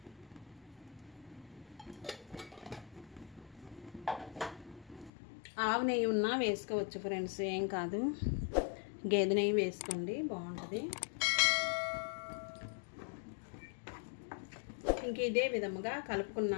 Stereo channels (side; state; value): right; drops out; at 5.1 s